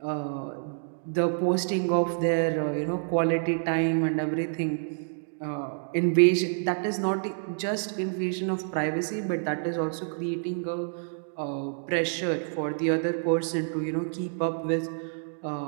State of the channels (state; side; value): silent; left; digital silence